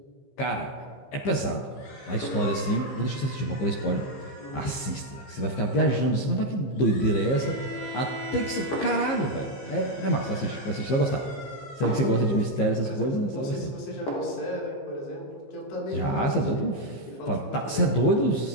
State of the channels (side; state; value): right; late; 15 ms